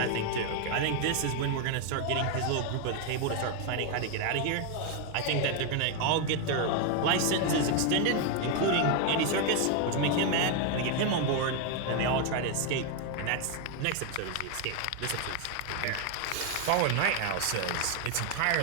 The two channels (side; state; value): both; different; correlation 0.01